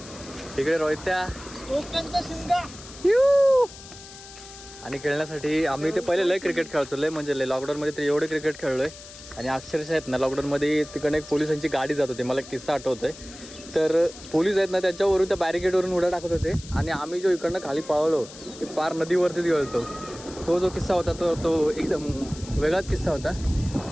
इकडे रोहित्या, कोकणचा शिंगा आणि खेळण्यासाठी आम्ही ते पहिले लय क्रिकेट खेळतो, लय म्हणजे लय. लॉकडाऊनमध्ये तर एवढे क्रिकेट खेळलोय आणि अक्षरशः आहेत ना लॉकडाऊनमध्ये तिकडे एक पोलिसांची गाडी जात होती, मला किस्सा आठवतोय. तर पोलीस आहेत ना त्याच्यावरून त्या बॅरिकेडवरून उड्या टाकत होते आणि आम्ही जो इकडनं खाली पळलो ते पार नदीवरतीच गेलतो. तो जो किस्सा होता तो एकदम वेगळाच किस्सा होता.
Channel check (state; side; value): noise; left; hiss, 16 dB below the sound